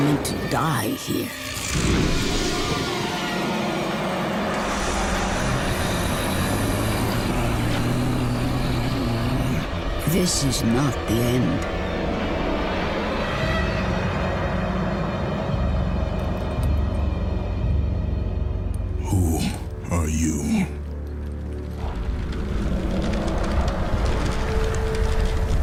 to die here. This is not the end. Who are you?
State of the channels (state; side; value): identical; both; correlation 1.00